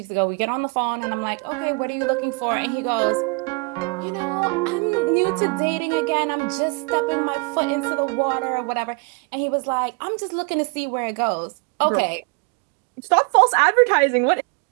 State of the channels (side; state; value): left; quieter; 32.0 dB